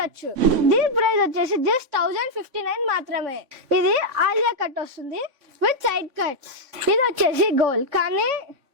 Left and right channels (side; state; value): left; late; 3.6 ms